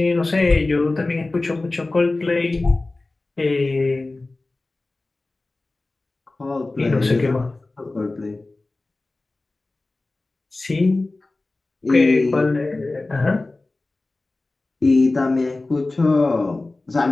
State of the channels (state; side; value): quieter; right; 3.1 dB